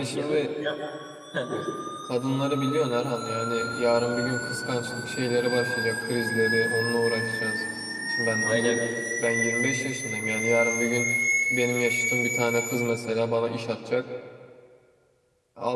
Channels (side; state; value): both; identical; correlation 1.00